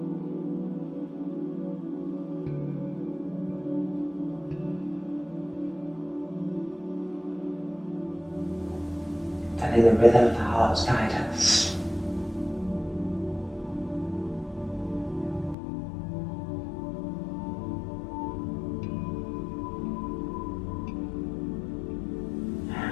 Letting the rhythm of the heart guide us.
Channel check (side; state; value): right; drops out; at 15.6 s